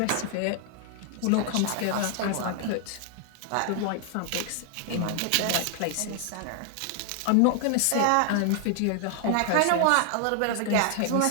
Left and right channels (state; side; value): different; both; correlation 0.00